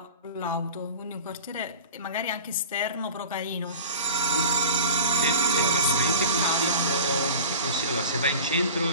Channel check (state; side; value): inverted; both; correlation -0.38